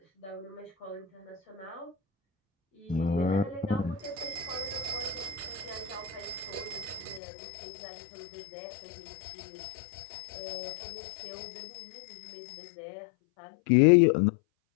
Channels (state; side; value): drops out; right; at 7.2 s